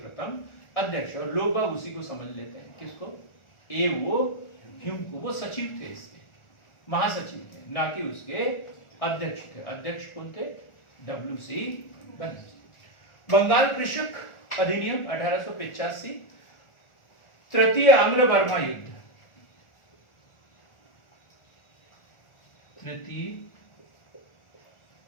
अध्यक्ष। और लोग बाग उसी को समझ लेते हैं, किसको? ए.ओ. ह्यूम को। वो सचिव थे, इसके महासचिव थे, ना कि उसके अध्यक्ष थे। अध्यक्ष कौन थे? डब्ल्यू.सी. बनर्जी। बंगाल कृषक अधिनियम 1885। तृतीय आंग्ल बर्मा युद्ध तृतीय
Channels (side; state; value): right; late; 1.4 ms